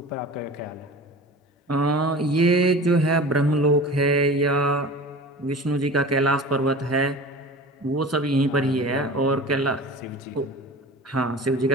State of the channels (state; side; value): normal; both; correlation 0.37